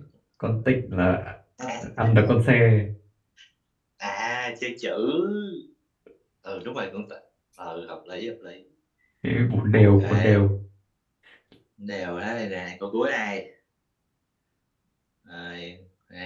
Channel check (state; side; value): identical; both; correlation 1.00